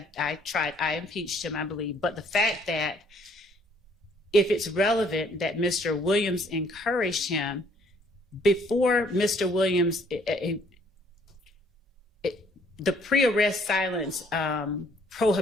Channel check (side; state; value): both; normal; correlation 0.62